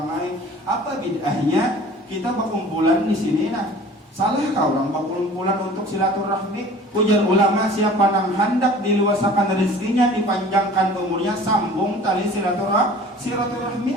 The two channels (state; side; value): normal; both; correlation 0.46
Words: lain apa bid'ahnya kita berkumpulan di sini nah salah kau orang berkumpulan untuk silaturahmi. Ujar ulama siapa yang hendak diluasakan rezekinya dipanjangkan umurnya sambung tali silaturahmi